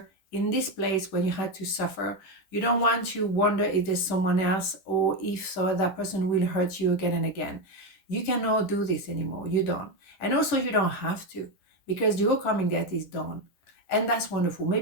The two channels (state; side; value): late; right; 10 ms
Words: in this place when you had to suffer. You don't want to wonder if there's someone else, or if so that person will hurt you again and again. You cannot do this anymore. You don't. And also you don't have to, because your karmic debt is done. And that's wonderful.